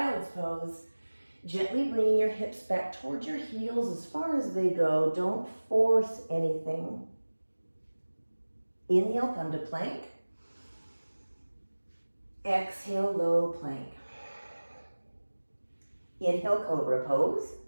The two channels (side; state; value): both; inverted; correlation -1.00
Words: pose, gently bringing your hips back towards your heels as far as they go. Don't force anything. Inhale, come to plank. Exhale, low plank. Inhale, Cobra pose.